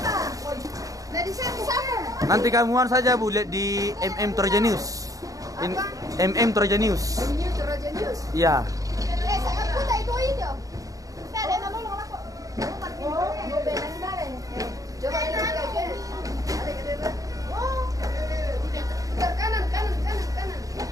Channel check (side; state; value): left; late; 0.17 ms